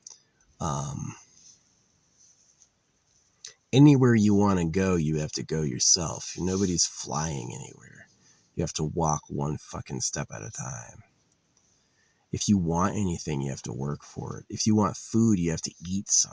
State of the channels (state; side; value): identical; both; correlation 1.00